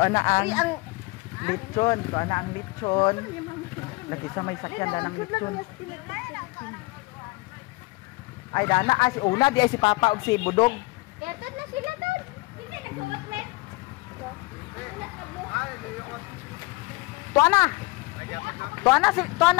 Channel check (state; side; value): quieter; right; 23.5 dB